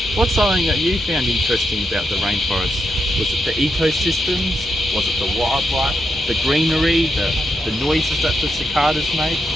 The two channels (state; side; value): normal; both; correlation 0.83